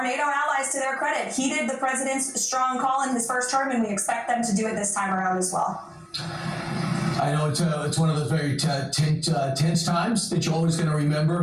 NATO allies, to their credit, heeded the president's strong call in his first term, and we expect them to do it this time around as well. I know it's one of the very tense times that you're always going to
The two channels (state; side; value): identical; both; correlation 1.00